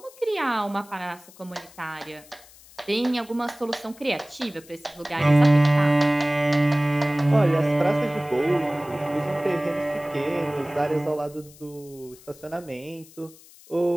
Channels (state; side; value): noise; left; hiss, 23 dB below the sound